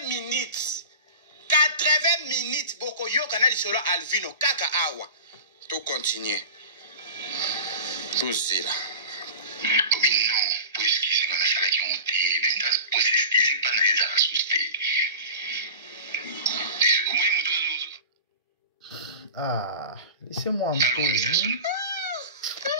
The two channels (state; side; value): inverted; both; correlation -0.33